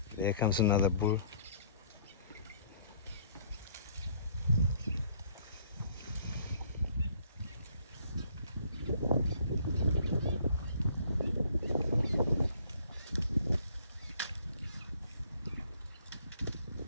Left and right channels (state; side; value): inverted; both; correlation -0.60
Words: There comes another bull.